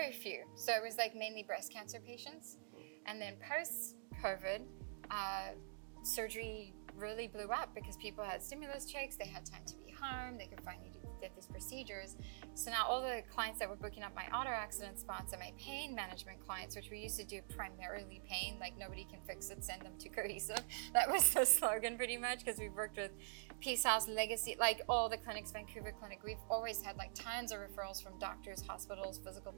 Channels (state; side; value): silent; left; digital silence